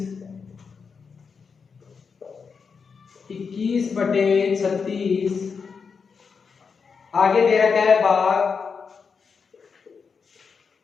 21/36 आगे दे रखा है भाग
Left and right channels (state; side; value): quieter; right; 5.6 dB